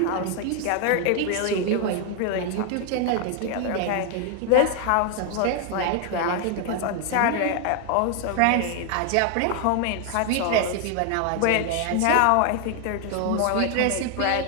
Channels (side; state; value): both; different; correlation 0.00